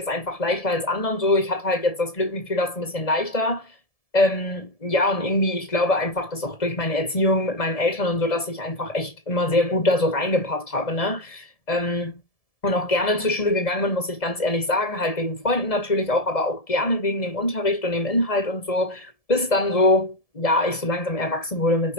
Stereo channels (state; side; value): late; right; 1.7 ms